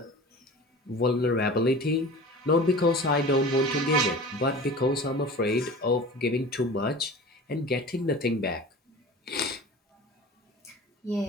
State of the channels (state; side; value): normal; both; correlation 0.38